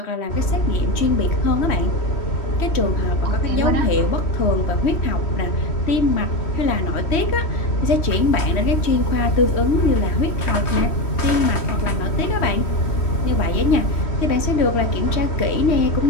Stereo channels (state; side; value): late; right; 3.1 ms